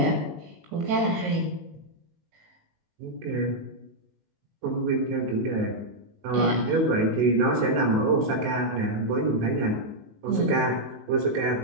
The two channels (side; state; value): left; late; 19 ms